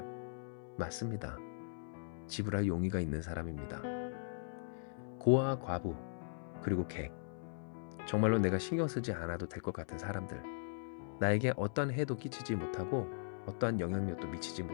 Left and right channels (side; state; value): right; silent; 52 dB below the other